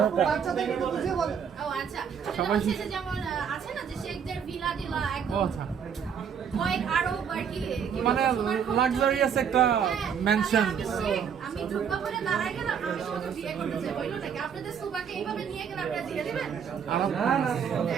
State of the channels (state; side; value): quieter; left; 7.4 dB